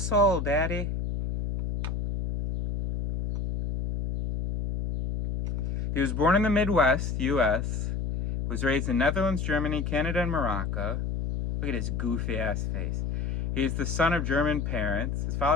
Daddy. He was born in the Midwest, U.S., was raised in Netherlands, Germany, Canada, and Morocco. Look at his goofy-ass face. He is the son of German parents. His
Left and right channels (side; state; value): left; noise; hum, 2 dB below the sound